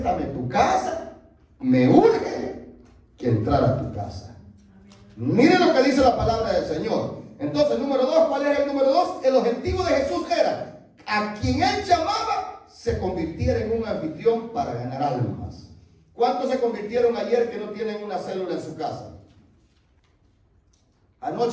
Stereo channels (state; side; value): identical; both; correlation 1.00